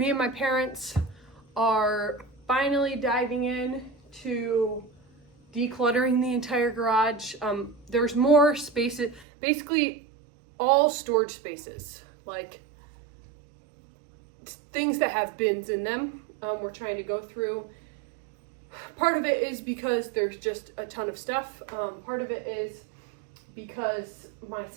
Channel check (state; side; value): drops out; left; at 9.2 s